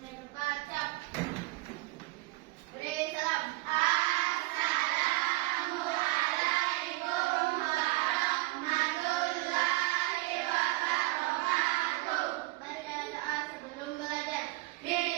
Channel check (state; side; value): quieter; left; 22.5 dB